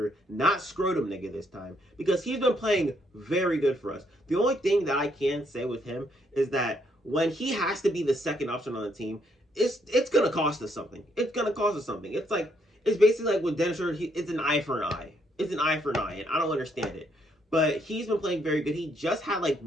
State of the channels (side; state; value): both; normal; correlation 0.72